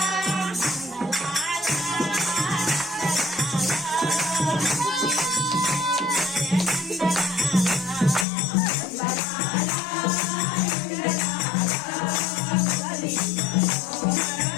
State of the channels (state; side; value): drops out; right; at 8.2 s